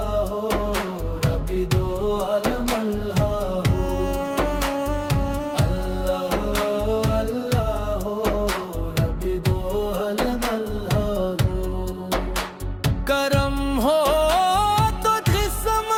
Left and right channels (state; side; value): identical; both; correlation 1.00